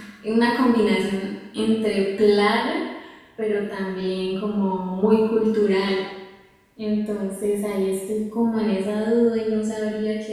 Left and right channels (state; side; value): identical; both; correlation 1.00